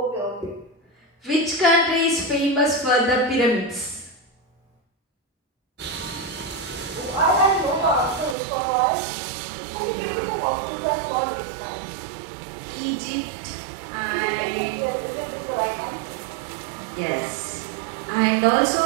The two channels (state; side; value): drops out; left; at 8.3 s